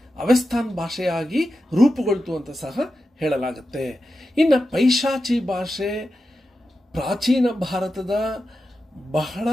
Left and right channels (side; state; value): both; normal; correlation 0.90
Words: ಅವಸ್ಥಾನ್ ಭಾಷೆಯಾಗಿ ರೂಪುಗೊಳ್ತು ಅಂತ ಸಹ ಹೇಳಲಾಗುತ್ತೆ. ಇನ್ನು ಪೈಶಾಚಿ ಭಾಷೆ ಪ್ರಾಚೀನ ಭಾರತದ ಬಹಳ